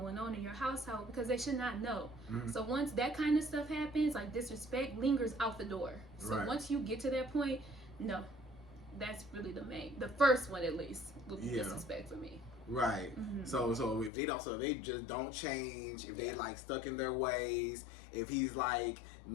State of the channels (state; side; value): drops out; right; at 14.1 s